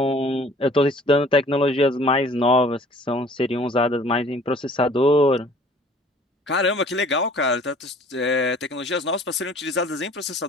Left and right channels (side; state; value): both; normal; correlation 0.52